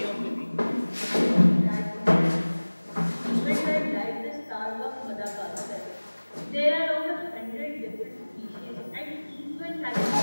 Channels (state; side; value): inverted; both; correlation -1.00